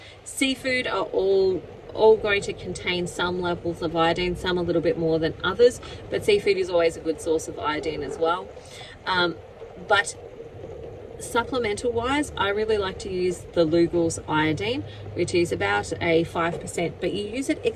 Seafood are all going to contain some levels of iodine, some a little bit more than others, but seafood is always a good source of iodine as well. But supplemental wise, I really like to use the Lugol's iodine, which is about a 5%, but you use it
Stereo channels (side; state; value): both; identical; correlation 1.00